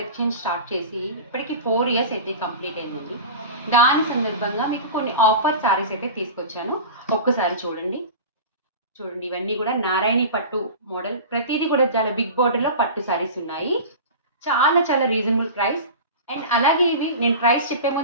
start చేసి ఇప్పటికి 4 ఇయర్స్ అయితే కంప్లీట్ అయింది. దాని సందర్భంగా మీకు కొన్ని ఆఫర్ సారీస్ అయితే తీసుకొచ్చాను. ఒక్కసారి చూడండి. ఇవన్నీ కూడా నారాయణి పట్టు మోడల్, ప్రతిదీ కూడా చాలా బిగ్ బోర్డర్లో పట్టు సారీస్ ఉన్నాయి. చాలా చాలా రీజనబుల్ ప్రైస్. అండ్ అలాగే ఇవి నేను ప్రైస్ చెప్పే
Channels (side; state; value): both; inverted; correlation -0.31